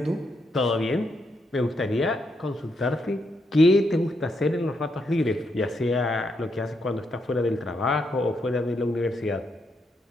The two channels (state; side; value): normal; both; correlation 0.79